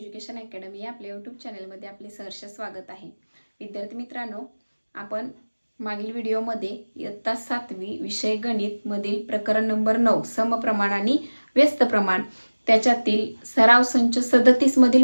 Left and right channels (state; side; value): inverted; both; correlation -1.00